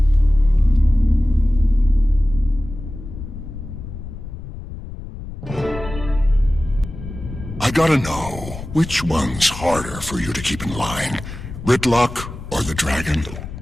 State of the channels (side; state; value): left; noise; rumble, 11 dB below the sound